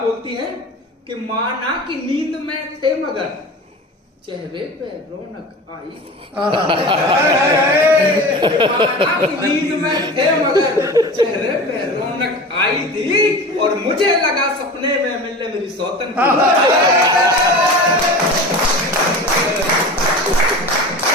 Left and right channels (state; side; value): normal; both; correlation 0.33